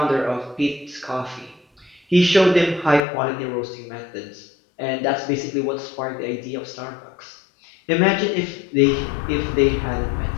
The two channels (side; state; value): right; drops out; at 3.0 s